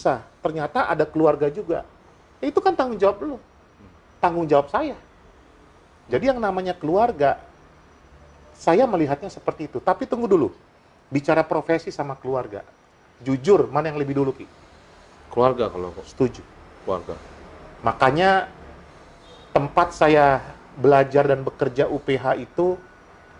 Ternyata ada keluarga juga. Itu kan tanggung jawab lu. Tanggung jawab saya. Jadi yang namanya keluarga, saya melihatnya seperti itu. Tapi tunggu dulu. Bicara profesi sama keluarga. Jujur, mana yang lebih dulu, Ki? Keluarga kalau kok. Setuju. Keluarga. Makanya tempat saya belajar dan bekerja UPH itu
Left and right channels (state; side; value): identical; both; correlation 1.00